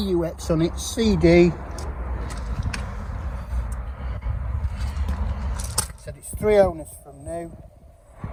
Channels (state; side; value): identical; both; correlation 1.00